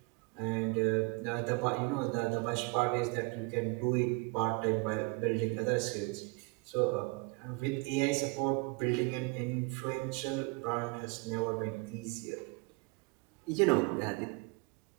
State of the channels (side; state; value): left; quieter; 28.3 dB